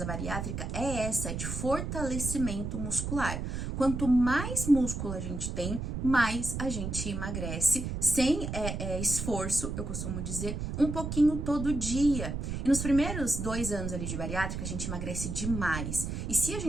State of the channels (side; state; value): right; noise; rumble, 4 dB below the sound